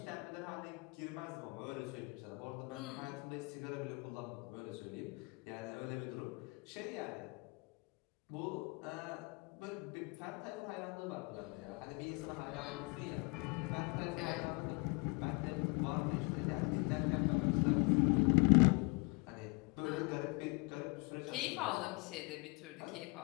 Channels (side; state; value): right; quieter; 29.3 dB